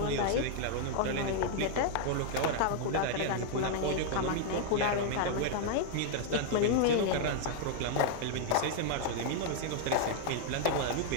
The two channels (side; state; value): both; different; correlation 0.00